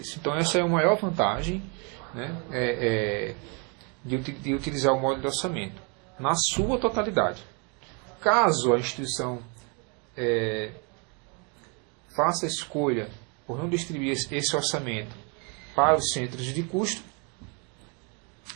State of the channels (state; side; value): quieter; left; 34.6 dB